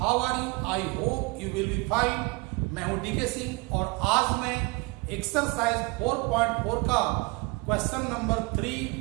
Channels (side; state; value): left; quieter; 26.6 dB